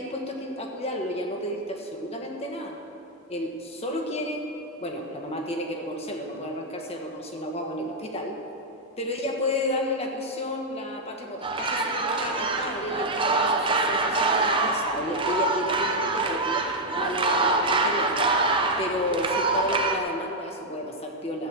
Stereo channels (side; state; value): both; normal; correlation -0.02